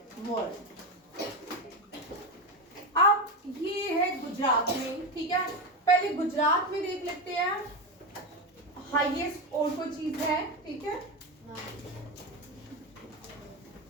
world. अब ये है गुजरात में। ठीक है, पहले गुजरात में देख लेते हैं हाईएस्ट और कोई चीज है। ठीक है,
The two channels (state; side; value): normal; both; correlation 0.15